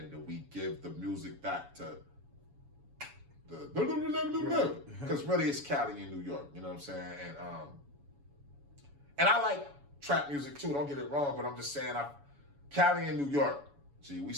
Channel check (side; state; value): left; late; 7.1 ms